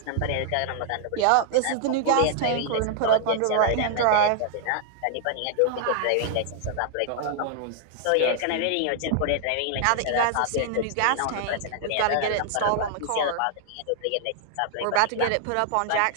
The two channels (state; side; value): different; both; correlation 0.00